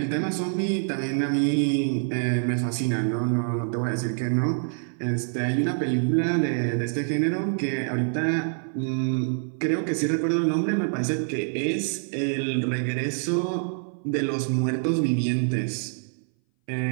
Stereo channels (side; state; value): left; silent; 59 dB below the other